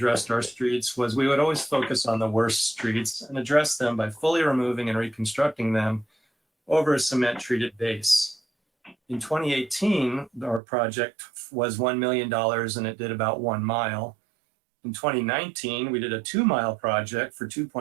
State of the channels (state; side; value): drops out; left; at 10.6 s